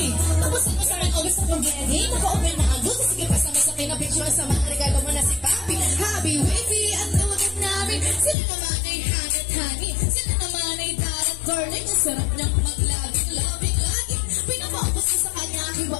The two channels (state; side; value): drops out; right; at 8.3 s